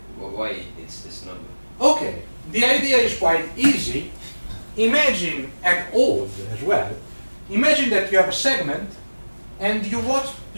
know why it's this number. Okay, the idea is quite easy. Imagine, and old as well, imagine that you have a segment and you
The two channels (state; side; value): inverted; both; correlation -1.00